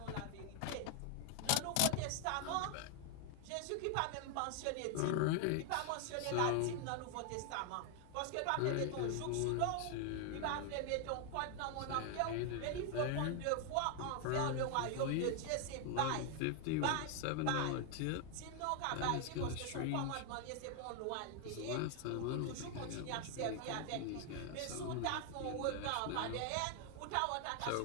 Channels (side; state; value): both; different; correlation 0.00